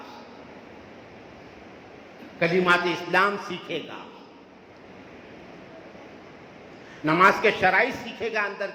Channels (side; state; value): both; identical; correlation 1.00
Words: کلمات اسلام سیکھے گا، نماز کے شرائط سیکھے گا اندر